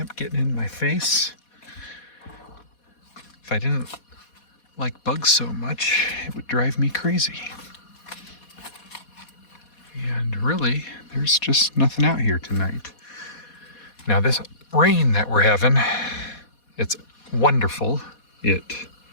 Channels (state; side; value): late; right; 4.2 ms